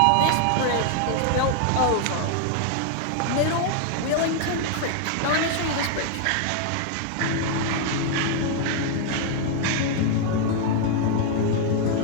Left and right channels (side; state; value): both; different; correlation 0.00